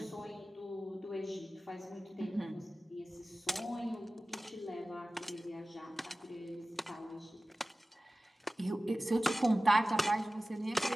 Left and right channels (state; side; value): normal; both; correlation 0.96